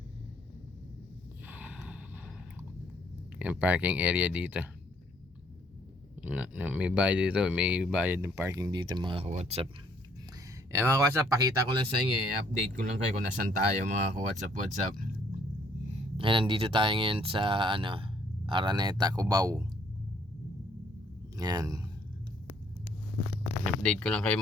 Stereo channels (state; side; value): normal; both; correlation 0.65